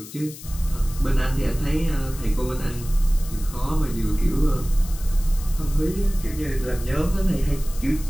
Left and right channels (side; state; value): left; noise; hiss, 15 dB below the sound